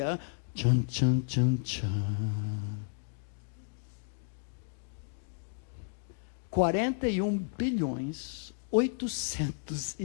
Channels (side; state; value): right; silent; digital silence